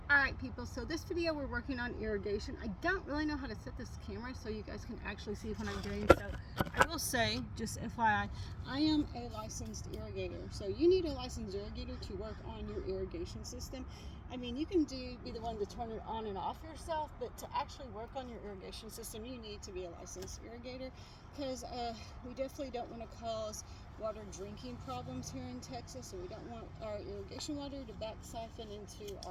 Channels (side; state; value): both; identical; correlation 1.00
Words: Alright people, so this video we're working on irrigation. I don't really know how to set this camera so you guys can actually see what I'm doing. So I will say, just FYI, I am a licensed irrigator. So you need a licensed irrigator to work on your irrigation system. I mean, you can be the one to turn it on and off yourself, but to actually work on your irrigation system, you need to be a licensed irrigator, because we definitely don't want to cause water drinking problems here in Texas, and we don't want our irrigation water to back siphon into